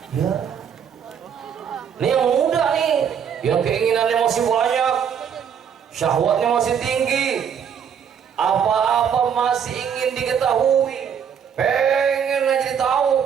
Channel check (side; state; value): left; quieter; 7.8 dB